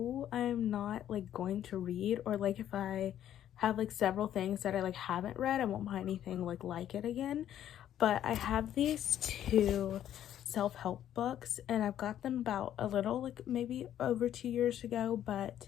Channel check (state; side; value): quieter; right; 11.0 dB